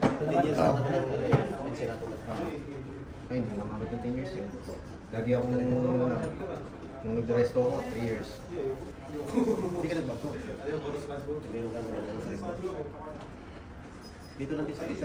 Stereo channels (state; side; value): identical; both; correlation 1.00